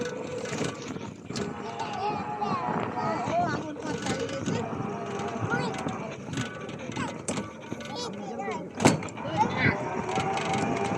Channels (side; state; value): both; identical; correlation 1.00